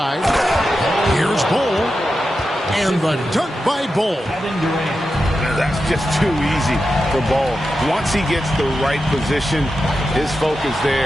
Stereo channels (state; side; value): normal; both; correlation 0.90